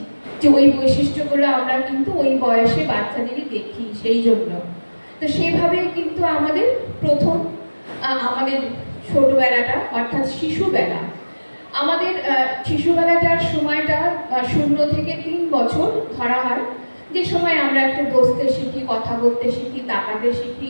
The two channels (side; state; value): both; inverted; correlation -1.00